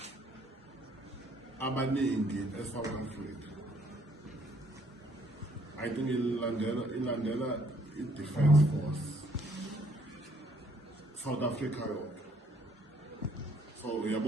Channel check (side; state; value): both; normal; correlation 0.65